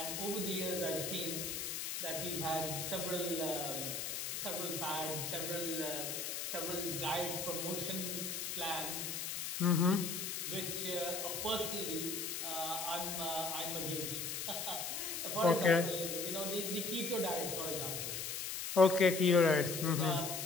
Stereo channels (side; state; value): left; noise; hiss, 3 dB below the sound